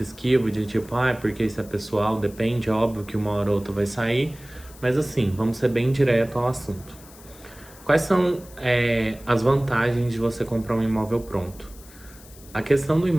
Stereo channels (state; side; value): noise; left; hiss, 22 dB below the sound